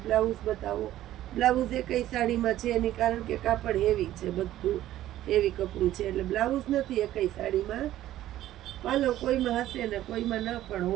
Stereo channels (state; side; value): quieter; left; 13.6 dB